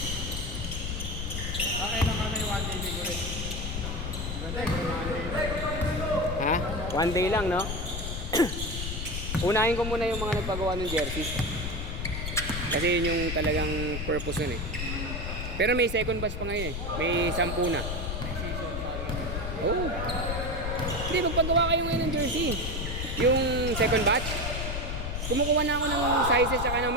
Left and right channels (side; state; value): left; noise; rumble, 4 dB below the sound